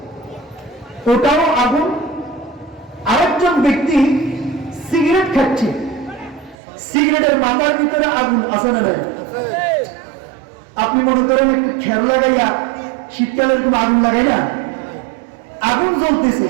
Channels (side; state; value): left; drops out; at 6.6 s